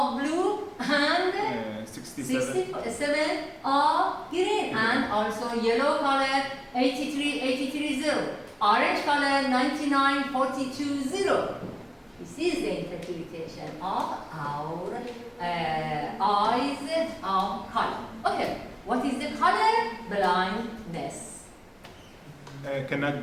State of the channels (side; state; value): both; identical; correlation 1.00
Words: blue and 67 of green, and also yellow color 83 0. Orange color 99 42 0. This is the interpretation of our eyes of color. Okay, what is the color blindness? Cannot